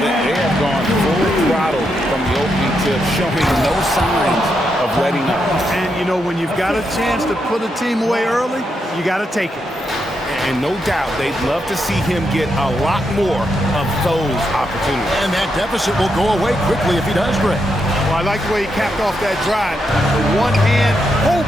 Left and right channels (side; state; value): both; normal; correlation 0.82